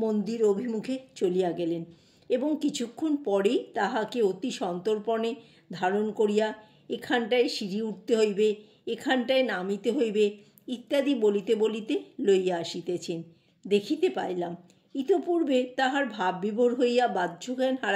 অভিমুখে চলিয়া গেলেন এবং কিছুক্ষণ পরেই তাহাকে অতি সন্তর্পণে ধারণ করিয়া এখানটায় সিঁড়ি উঠতে হইবে, এখানটায় নামিতে হইবে ইত্যাদি বলিতে বলিতে লইয়া আসিতেছেন। দেখিতে পাইলাম ইতপূর্বে তাহার ভাববিভোর হইয়া বাহ্যজ্ঞান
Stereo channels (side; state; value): both; identical; correlation 1.00